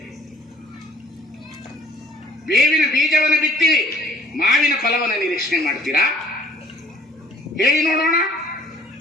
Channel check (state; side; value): normal; both; correlation 0.55